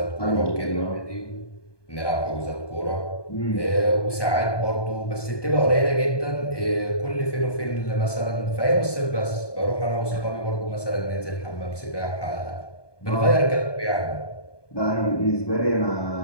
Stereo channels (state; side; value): late; right; 1.2 ms